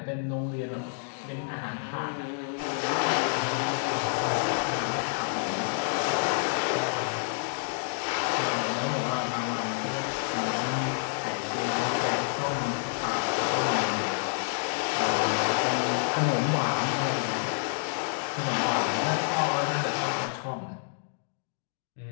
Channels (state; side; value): silent; right; digital silence